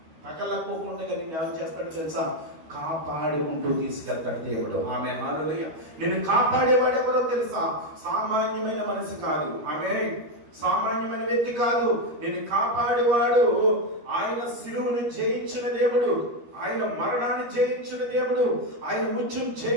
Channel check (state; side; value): late; left; 13 ms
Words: తగలకపోకుండా నేను ఏం చేస్తాడు తెలుసా? కాపాడుకుంటూ తీసుకెళ్తాడు దేవుడు. ఆమె హల్లెలూయా. నేను కాపాడేవాడు ఎవరో తెలుసా? సామాన్యమైన మనిషి కాదు. ఆమె సామాన్యమైన వ్యక్తి కాదు. నేను కాపాడేవాడు ఆయన శిలువను జయించిన దేవుడు, ఆయన మరణాన్ని జయించిన దేవుడు, ఆయన ముత్యం